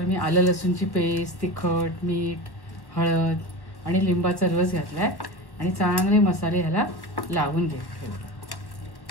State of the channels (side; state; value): right; late; 1.1 ms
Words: मी आलं लसूणची पेस्ट, तिखट, मीठ, हळद आणि लिंबाचा रस घातलाय आणि चांगले मसाले ह्याला लावून घेतले।